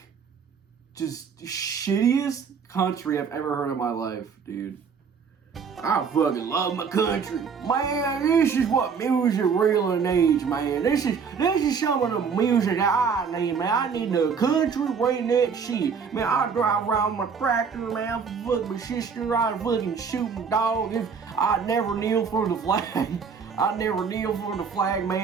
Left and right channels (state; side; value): quieter; left; 6.1 dB